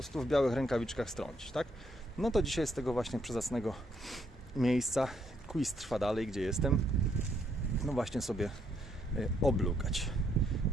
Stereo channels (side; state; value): both; normal; correlation 0.73